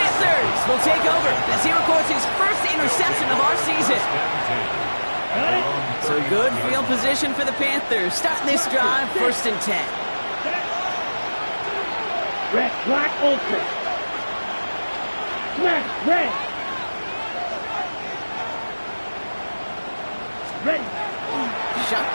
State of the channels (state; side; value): inverted; both; correlation -1.00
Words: will take over as he records his first interception of our season. So good field position for the Panthers. Starting this drive, 1st and 10. Red, black, open. Smash, red. Ready.